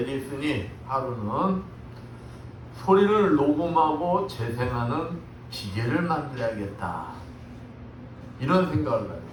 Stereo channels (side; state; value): both; identical; correlation 1.00